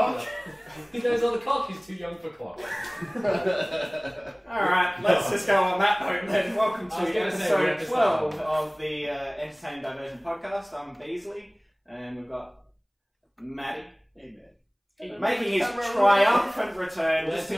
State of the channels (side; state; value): both; identical; correlation 1.00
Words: it up. His name's on the clock. He's too young for clock. Alright, let's just go on that note then. Welcome to episode 12 of the Entertaining Diversion podcast. I'm Beazley, and we've got Maddie. Hey, man. Making his triumphant return, just to